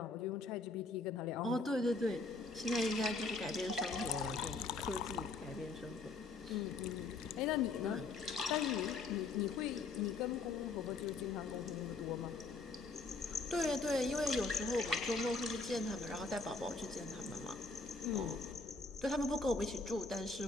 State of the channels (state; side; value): quieter; right; 3.7 dB